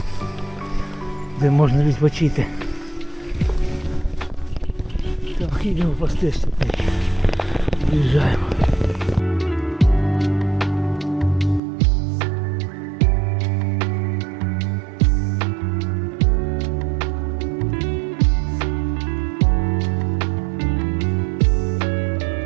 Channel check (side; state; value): left; drops out; at 11.6 s